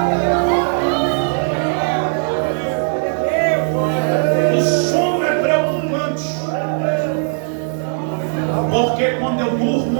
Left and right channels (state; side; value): silent; left; 67 dB below the other